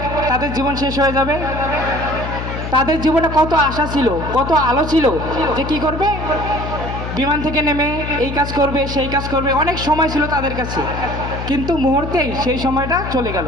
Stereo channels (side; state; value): left; noise; hum, 6 dB below the sound